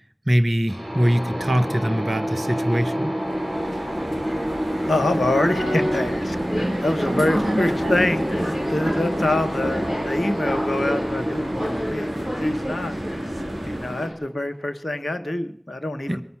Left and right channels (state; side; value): normal; both; correlation 0.96